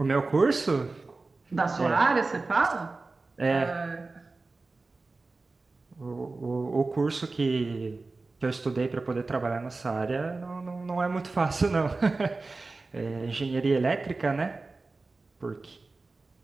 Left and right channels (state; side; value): quieter; left; 3.6 dB